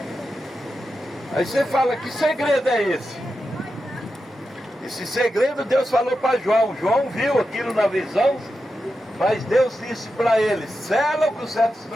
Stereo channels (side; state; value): both; normal; correlation 0.89